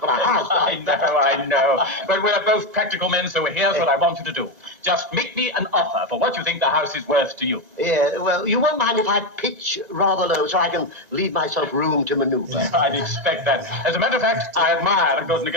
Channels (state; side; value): late; left; 1.9 ms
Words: a house. I know. But we're both practical men, so here's what I want you to do. Just make me an offer for what you think the house is worth to you. Yeah, well, you won't mind if I pitch rather low so I can leave myself room to maneuver. I'd expect that. As a matter of fact, I admire a good